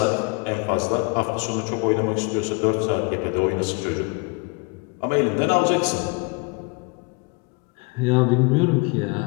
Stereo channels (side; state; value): right; quieter; 31.6 dB